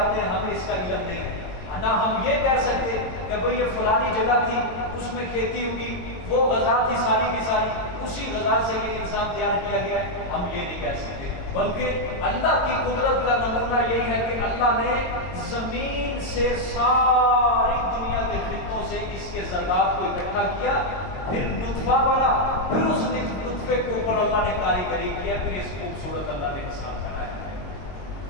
ہیں، ہمیں اس کا علم نہیں ہے۔ نہ ہم یہ کہہ سکتے کہ بھئی یہ فلانی جگہ تھی، اس میں کھیتی ہوگی، وہ غذا تھی ساری کی ساری، اسی غذا سے یہ انسان تیار کیا گیا ہے، ہم یہ نہیں کہہ سکتے۔ بلکہ اللہ کی قدرت کا نمونہ یہی ہے کہ اللہ نے زمین سے ساری دنیا کے خطوں سے اس کے ذرات کو اکٹھا کیا، پھر نطفہ بنا، پھر اس نطفے کے اوپر اللہ نے کاریگری کیا، پھر اس خوبصورت اللہ نے انسان بنایا ہے۔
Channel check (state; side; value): late; right; 22 ms